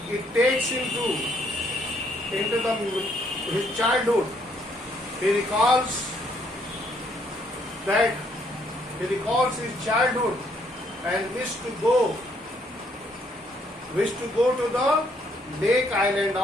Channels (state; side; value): normal; both; correlation 0.69